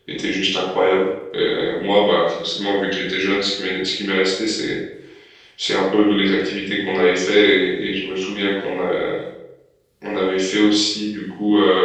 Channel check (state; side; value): identical; both; correlation 1.00